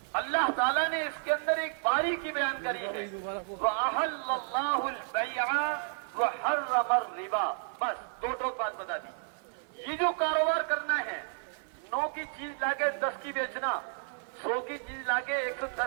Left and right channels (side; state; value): left; silent; 57 dB below the other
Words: اللہ تعالیٰ نے اس کے اندر ایک باریکی بیان کری ہے, وَأَحَلَّ اللَّهُ الْبَيْعَ وَحَرَّمَ الرِّبَا. بس دو بات بتا دی. یہ جو کاروبار کرنا ہے, 9 کی چیز لا کے 10 کی بیچنا, 100 کی چیز لا کے